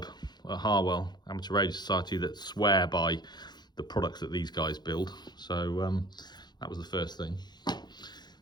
at Harwell Amateur Radio Society that swear by the products that these guys build. So that was the first thing.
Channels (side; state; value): right; late; 0.21 ms